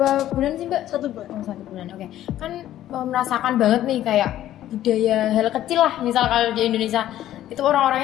bulan sih Mbak? 1 bulan. 1 bulan. Oke. Kan merasakan banget nih kayak budaya hal kecil lah. Misal kalau di Indonesia itu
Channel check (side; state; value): right; quieter; 12.8 dB